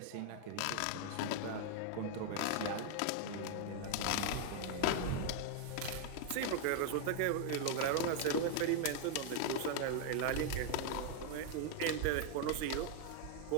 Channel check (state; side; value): different; both; correlation 0.00